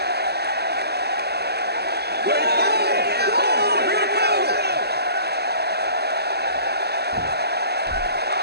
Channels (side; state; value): left; late; 0.47 ms